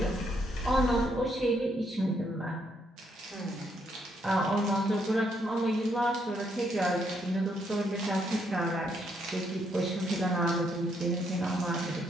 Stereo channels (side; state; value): both; normal; correlation 0.74